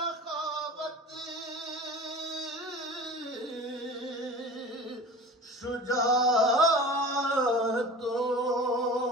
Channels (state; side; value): normal; both; correlation 0.38